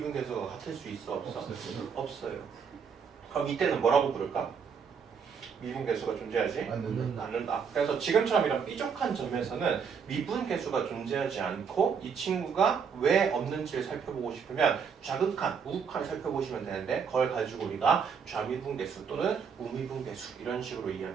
같을 수 있어? 없어? 없어요. 그럼 이때는 뭐라고 부를까? 미분계수가 존재하지 않는다. 그래서 지금처럼 이런 삐죽한 점에서는 미분계수가 존재하지 않고 이 친구가 왜 없는지를 살펴보고 싶으면 좌극한, 우극한을 살펴보시면 되는데 그걸 가지고 우리가 좌미분계수 또는 우미분계수 이런 식으로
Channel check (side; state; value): left; quieter; 6.5 dB